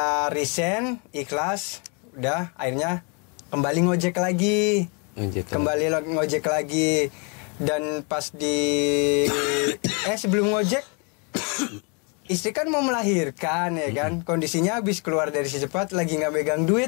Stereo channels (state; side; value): quieter; right; 34.5 dB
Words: resign, ikhlas, udah akhirnya kembali ngojek lagi. Ngojek lagi. Dan pas sebelum ngojek istri kan mau melahirkan, ya kan. Kondisinya habis keluar dari secepat, lagi nggak megang